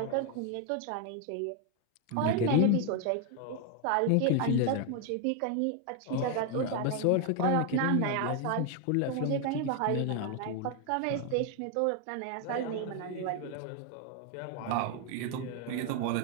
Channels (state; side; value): different; both; correlation 0.01